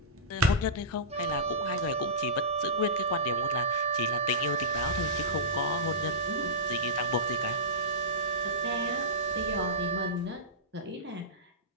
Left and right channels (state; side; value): normal; both; correlation -0.18